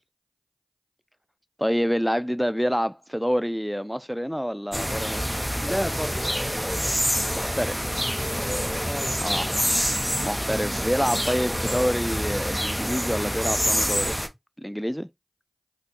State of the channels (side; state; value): both; identical; correlation 1.00